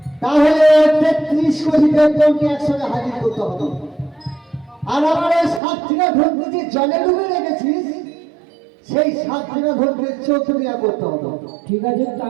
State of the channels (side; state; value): left; drops out; at 5.6 s